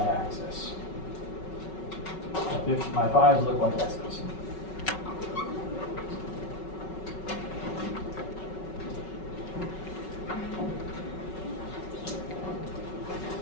My 5s look like S's.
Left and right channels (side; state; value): right; late; 5.4 ms